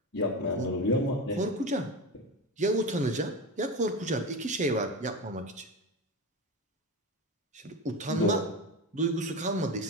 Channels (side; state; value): both; normal; correlation 0.22